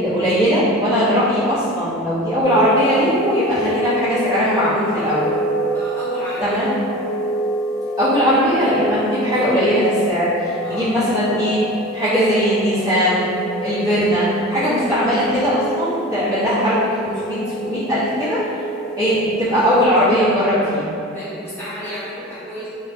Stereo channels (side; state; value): both; normal; correlation 0.34